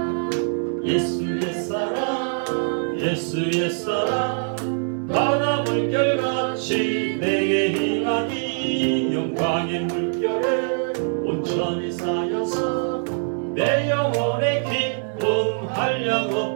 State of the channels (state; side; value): silent; left; 60 dB below the other